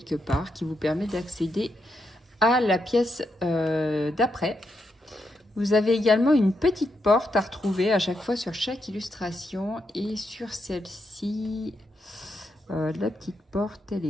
part qui vous permet d'accéder à la pièce d'après. Vous avez également une petite porte à retrouver à chaque fois sur chaque illustration. Et sur celle-ci, la petite porte, elle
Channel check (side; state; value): both; normal; correlation 0.82